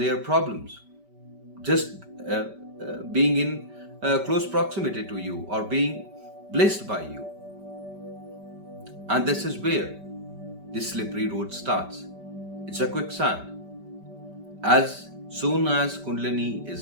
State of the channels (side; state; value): left; late; 5.1 ms